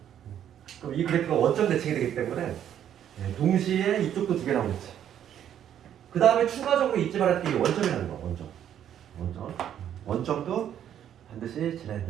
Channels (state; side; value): quieter; left; 10.1 dB